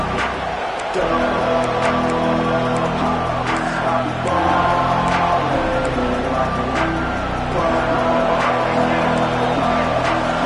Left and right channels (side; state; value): both; identical; correlation 1.00